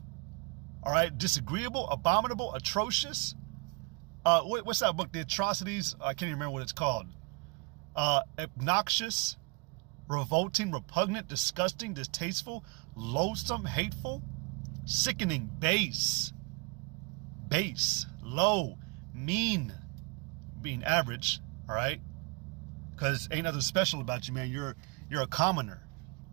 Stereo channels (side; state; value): left; quieter; 31.8 dB